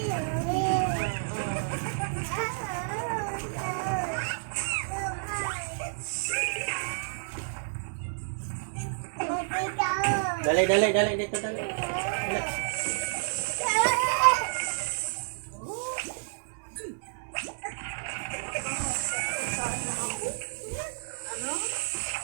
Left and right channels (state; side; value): silent; left; digital silence